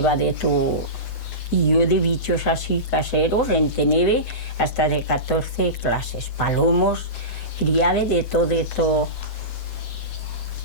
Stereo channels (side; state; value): right; late; 9.9 ms